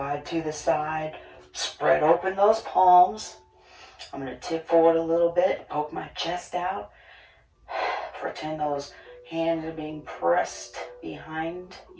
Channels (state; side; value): identical; both; correlation 1.00